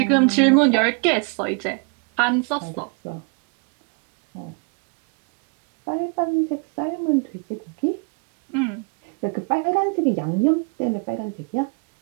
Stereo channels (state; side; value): quieter; left; 36.2 dB